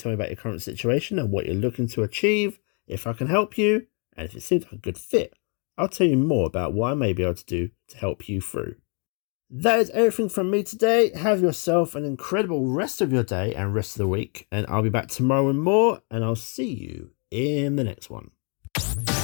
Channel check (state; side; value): quieter; right; 38.0 dB